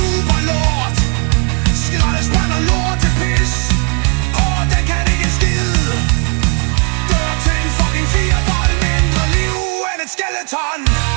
lort. Skraldespand og lort til pis. Den kan ikke en skid. Dør til en fucking firebold. Mindre liv end et skeleton.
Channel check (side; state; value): left; quieter; 37.3 dB